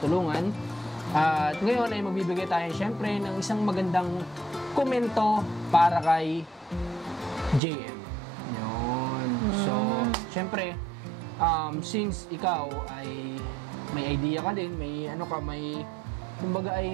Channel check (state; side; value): drops out; left; at 7.6 s